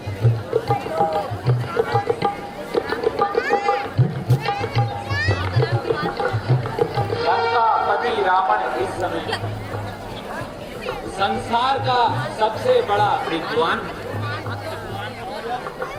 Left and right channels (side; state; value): both; identical; correlation 1.00